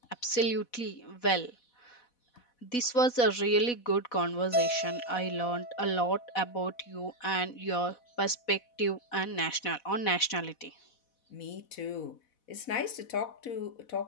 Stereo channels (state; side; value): late; right; 4.1 ms